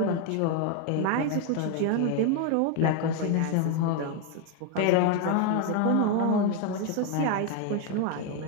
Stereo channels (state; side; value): different; both; correlation 0.01